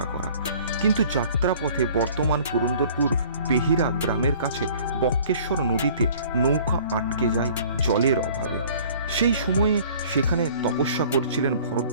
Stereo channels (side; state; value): both; inverted; correlation -0.51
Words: করা। কিন্তু যাত্রাপথে বর্তমান পুরন্দরপুর বেহিরা গ্রামের কাছে বক্রেশ্বর নদীতে নৌকা আটকে যায় জলের অভাবে। সেই সময়ে সেখানে তপস্যা করছিলেন